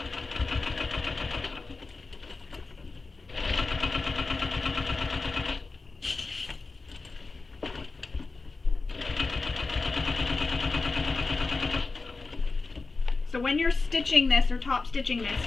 So when you're stitching this or top stitching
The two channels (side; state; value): right; quieter; 3.8 dB